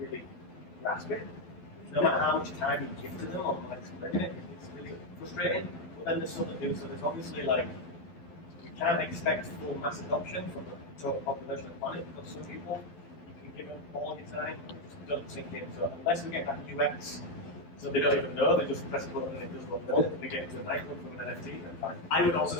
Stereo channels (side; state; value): right; late; 12 ms